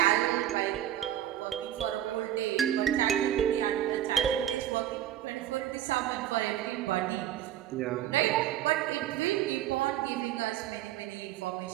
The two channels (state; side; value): quieter; left; 11.8 dB